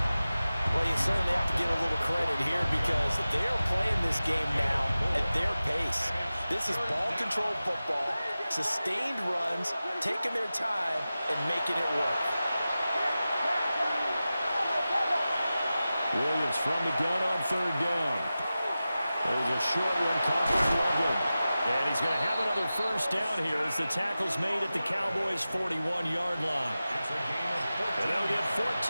Well, you certainly have to give a little credit here because they're playing this game now at their pace. This is ball control football, sustained runs, taking their time, and making it work. Williams from the gun on 3rd down. a short one caught by Loveland. And he's going to have another first down here as the tackle's made at the Cowboys' 41-yard line. And they'll get 14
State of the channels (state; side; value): inverted; both; correlation -0.95